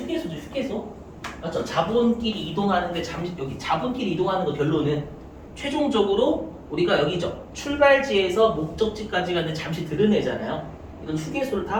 휴게소 맞죠? 자본끼리 이동하는데 잠시 여기 자본끼리 이동하는 거 결론은 최종적으로 우리가 여기죠. 출발지에서 목적지까지 가는데 잠시 들으내잖아요. 이건 휴게소를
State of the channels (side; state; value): both; identical; correlation 1.00